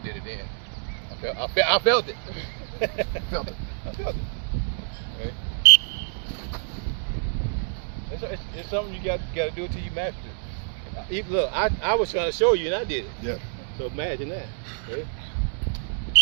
did it then. I felt it. Felt it. I felt it. Right? It's something you got to do until you master it. Look, I was trying to show you and I did it. Yeah. So imagine that. Ready?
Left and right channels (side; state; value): left; silent; digital silence